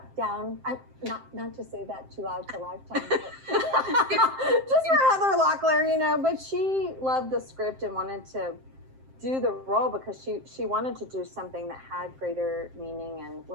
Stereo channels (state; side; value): late; left; 7.6 ms